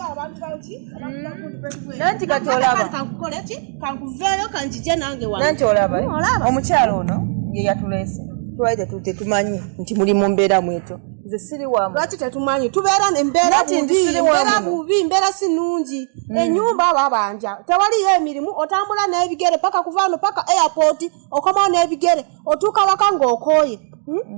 abantu baki? Nanti katolaba. Kankukole ki? Kankuveyo kanjije nange wano. Nanti olaba. Omukyalo ono ye yatulese. Twaide tute tumanyi nti muli mu mbeera mweto. Nze siri wamu. Lwaki tetumanyi tubeera n'embeera bubi, mbeera si nnungi. Ennyumba babanja. Tewaliyo emirimu otambula n'ebigere paka kuvaano paka airport okomawo n'ebigere otuuka waka ng'okooye.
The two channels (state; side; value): silent; left; digital silence